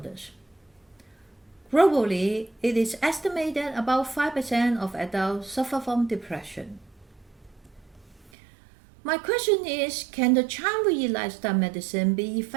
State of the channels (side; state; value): left; drops out; at 8.3 s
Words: Globally, it is estimated about 5% of adults suffer from depression. My question is, can the Chan-Wu-Yi lifestyle medicine be